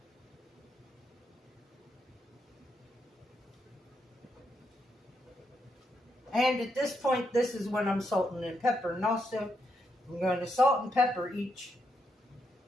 And at this point, this is when I'm salting and pepper. And also, I'm going to salt and pepper each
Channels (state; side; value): normal; both; correlation 0.80